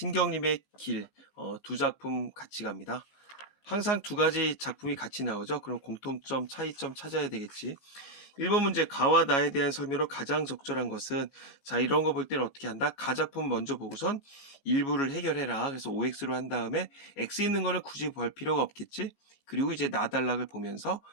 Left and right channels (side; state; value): right; late; 19 ms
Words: 길 두 작품 같이 갑니다. 항상 두 가지 작품이 같이 나오죠. 그럼 공통점, 차이점 찾아야 되겠지. 1번 문제 가와 나에 대한 설명으로 가장 적절한 것은 자 이런 거 볼 때는 어떻게 한다? 가 작품 먼저 보고선 일부를 해결해라. 그래서 OX로 한 다음에 X 있는 거는 굳이 볼 필요가 없겠지. 그리고 이제 나달락을 보면서